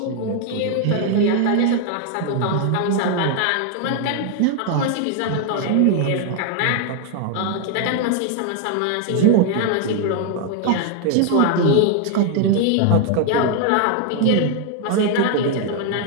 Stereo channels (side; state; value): both; different; correlation 0.00